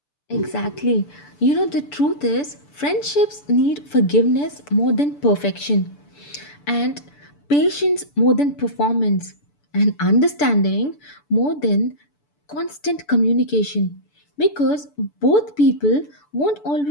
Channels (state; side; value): late; right; 6.9 ms